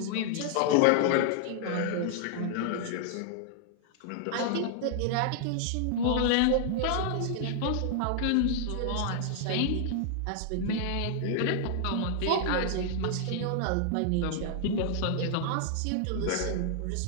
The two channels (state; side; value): different; both; correlation 0.00